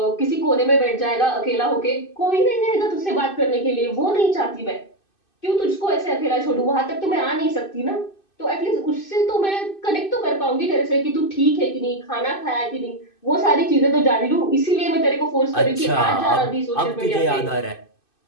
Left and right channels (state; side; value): late; right; 2.6 ms